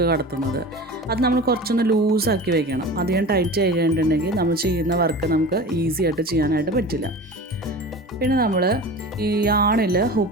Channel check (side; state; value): both; normal; correlation 0.35